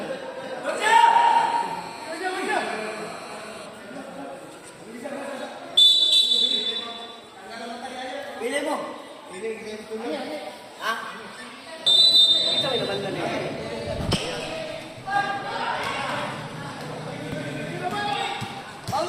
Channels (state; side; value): identical; both; correlation 1.00